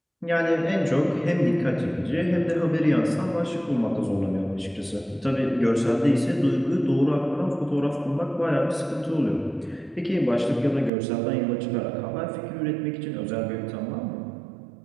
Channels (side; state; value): left; drops out; at 10.9 s